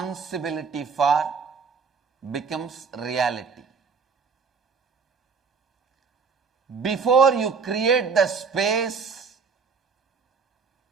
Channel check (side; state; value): left; quieter; 5.5 dB